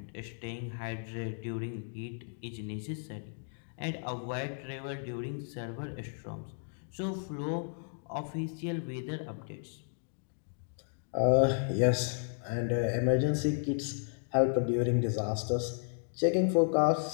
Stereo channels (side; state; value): right; silent; digital silence